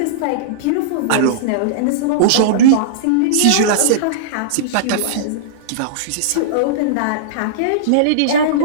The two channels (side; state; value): both; different; correlation -0.03